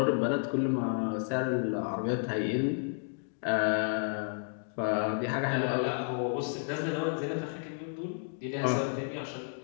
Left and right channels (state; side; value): silent; right; digital silence